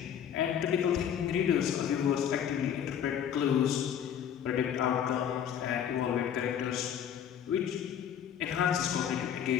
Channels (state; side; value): quieter; right; 9.1 dB